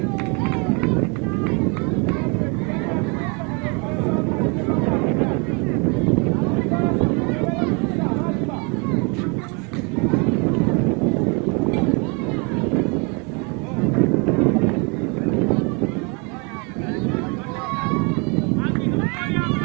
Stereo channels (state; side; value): quieter; left; 32.6 dB